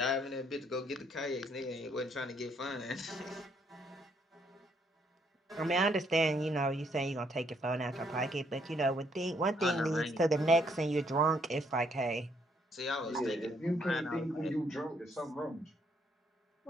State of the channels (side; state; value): both; normal; correlation 0.70